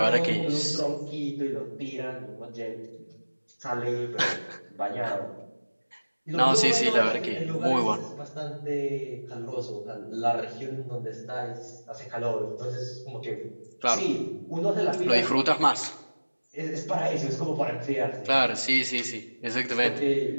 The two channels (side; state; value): both; inverted; correlation -1.00